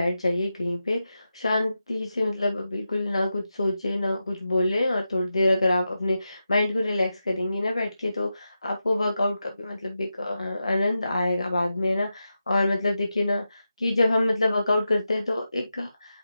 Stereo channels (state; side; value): inverted; both; correlation -0.89